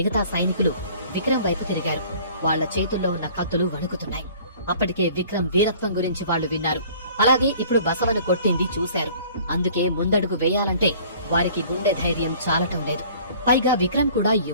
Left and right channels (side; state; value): both; inverted; correlation -0.51